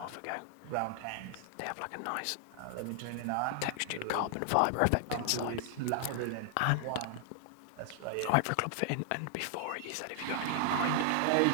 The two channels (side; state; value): both; different; correlation 0.00